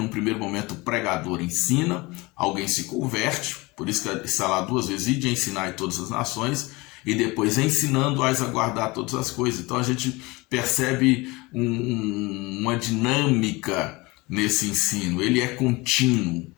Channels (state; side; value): quieter; right; 23.6 dB